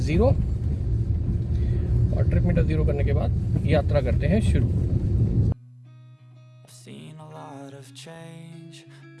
0 और ट्रिप मीटर 0 करने के बाद यात्रा करते हैं शुरू।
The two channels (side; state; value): both; identical; correlation 1.00